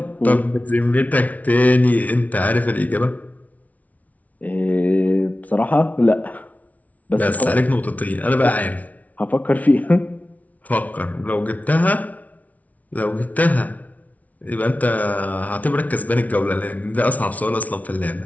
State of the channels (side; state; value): right; late; 0.071 ms